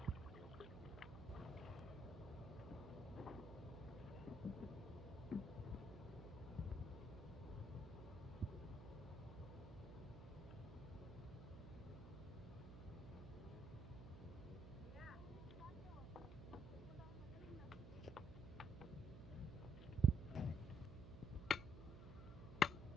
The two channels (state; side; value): noise; right; hum, 10 dB below the sound